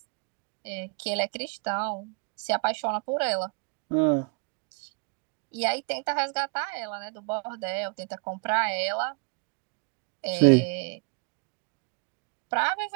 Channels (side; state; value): left; quieter; 33.3 dB